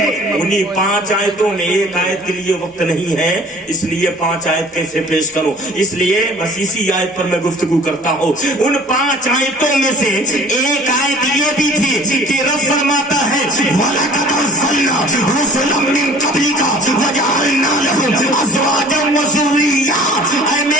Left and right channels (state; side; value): normal; both; correlation 0.48